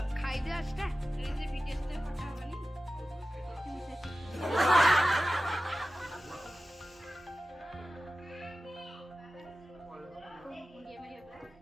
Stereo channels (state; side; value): normal; both; correlation 0.95